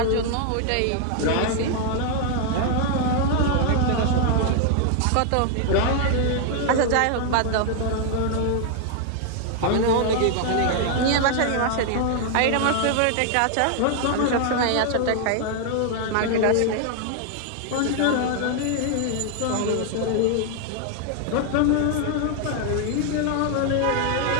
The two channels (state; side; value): different; both; correlation 0.00